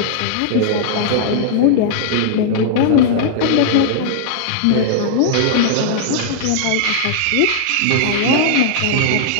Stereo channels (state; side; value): different; both; correlation -0.01